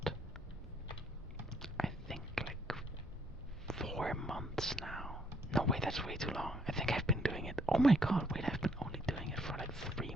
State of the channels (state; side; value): normal; both; correlation 0.68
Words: I think 4 months now. No, wait, that's way too long. I think I've been doing it. Oh my god, wait, I've been only doing it for 3